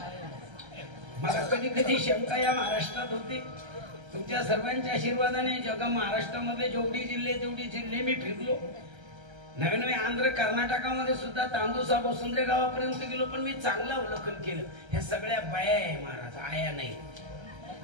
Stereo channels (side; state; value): left; late; 1.3 ms